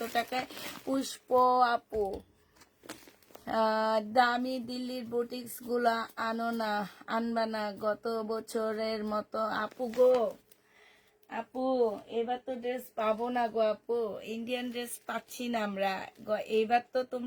টাকায়? পুষ্প আপু দামি দিল্লির বুটিক্স গুলা আনো না, আনবা না গত বছরের মতো। আপু গো, আপু এবার তো ড্রেস পাবো না গো আপু, ইন্ডিয়ান ড্রেস পাচ্ছি না আমরা। এইবার তো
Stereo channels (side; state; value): both; identical; correlation 1.00